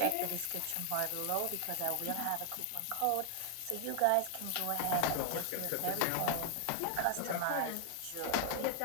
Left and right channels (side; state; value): both; different; correlation 0.00